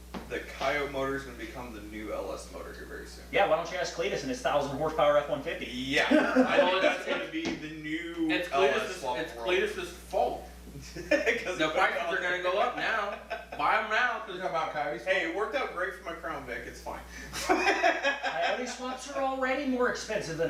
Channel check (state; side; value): identical; both; correlation 1.00